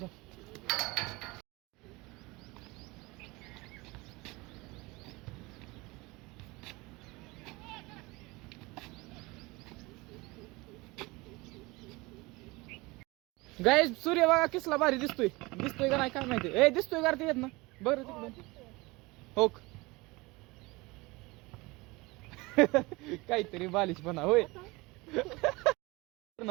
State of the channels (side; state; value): left; quieter; 23.3 dB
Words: गाय सूर्य बघा किसला भारी दिसतोय का नाही काय माहिती. ए दिसतोय का ते येत ना बरं तिकडे हो काहीतरी बालिश पण होय